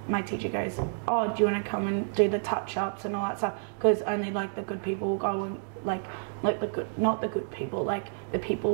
my teacher goes, oh, do you want to come and do the touch-ups and all that stuff? Because only like the good people will go and like the good, not the good people, like the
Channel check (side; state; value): left; silent; digital silence